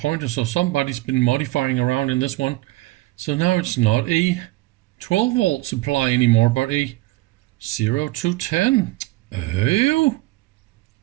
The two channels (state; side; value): quieter; left; 19.7 dB